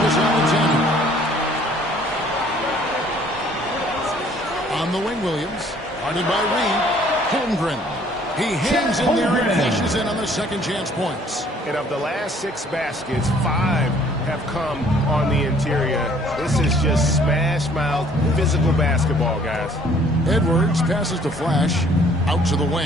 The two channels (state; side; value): normal; both; correlation 0.58